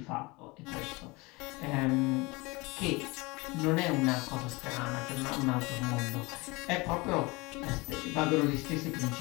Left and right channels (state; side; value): quieter; right; 24.5 dB